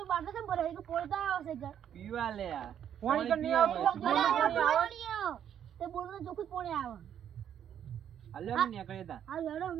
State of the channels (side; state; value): left; quieter; 9.5 dB